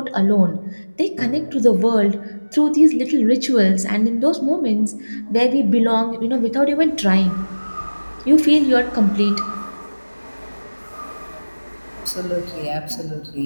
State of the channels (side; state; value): both; inverted; correlation -1.00